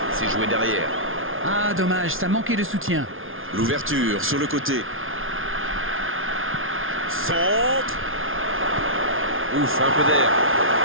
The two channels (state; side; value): late; left; 0.59 ms